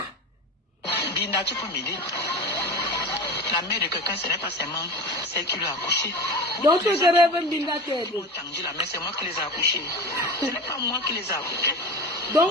Binda, tu peux m'aider? La mère de quelqu'un, ce n'est pas seulement celle qui l'a accouché. Donc, tu rêves Binda t'aider. C'est moi qui les ai accouchés. Ce n'est pas moi qui les ai accouchés.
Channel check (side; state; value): both; normal; correlation 0.30